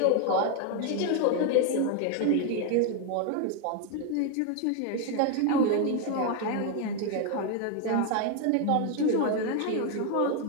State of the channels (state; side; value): different; both; correlation 0.01